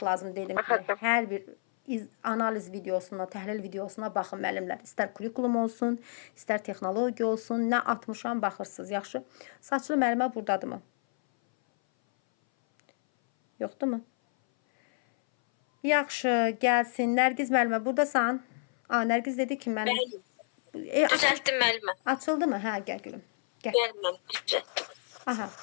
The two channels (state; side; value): silent; right; 57 dB below the other